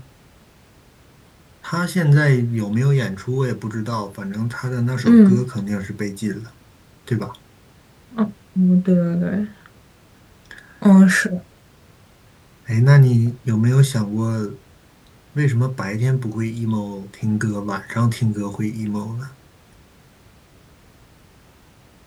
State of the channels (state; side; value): identical; both; correlation 1.00